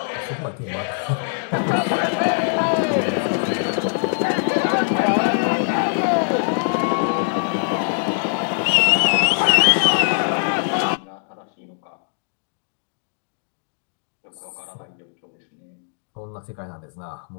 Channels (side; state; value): right; silent; digital silence